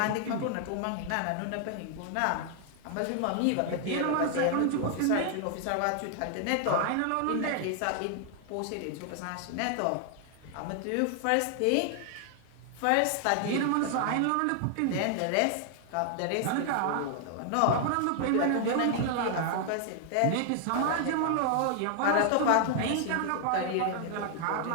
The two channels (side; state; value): both; different; correlation 0.00